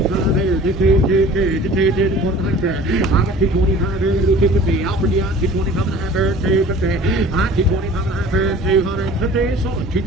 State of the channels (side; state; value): both; normal; correlation 0.45